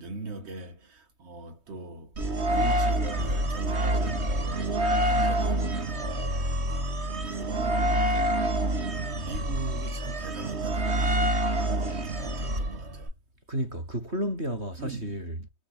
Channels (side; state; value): left; late; 3.2 ms